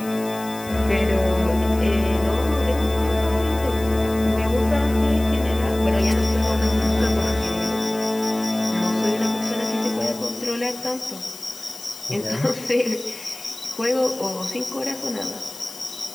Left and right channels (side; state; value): left; noise; hiss, 16 dB below the sound